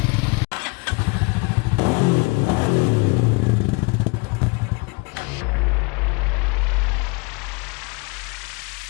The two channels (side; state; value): right; quieter; 30.2 dB